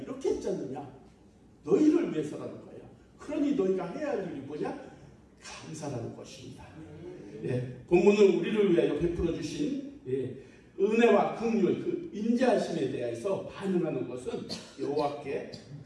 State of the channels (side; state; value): both; identical; correlation 1.00